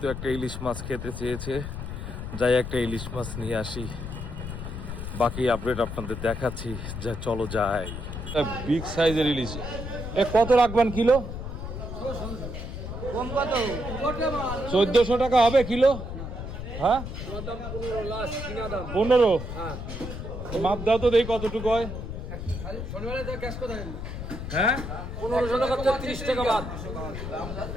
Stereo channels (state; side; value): noise; left; rumble, 7 dB below the sound